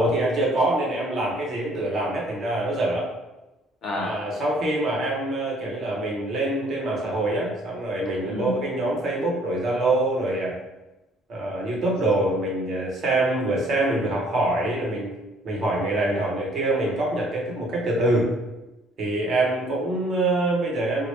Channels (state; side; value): normal; both; correlation 0.60